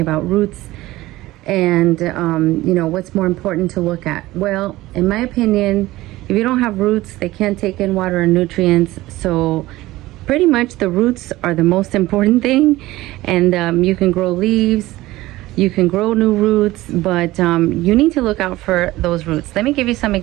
roots and what's more important to look at. Well, in my opinion, if you don't have roots, they can't take in water and nutrients. So pretty much the roots are the most important thing. And you can grow leaves, you can grow new roots, but you need to look out for those roots. Let me give you some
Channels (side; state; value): left; quieter; 17.7 dB